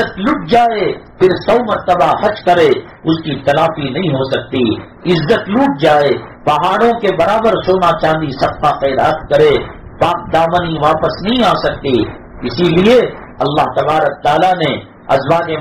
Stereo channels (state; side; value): identical; both; correlation 1.00